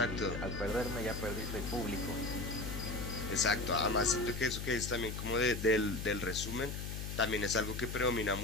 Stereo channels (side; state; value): left; noise; hum, 5 dB below the sound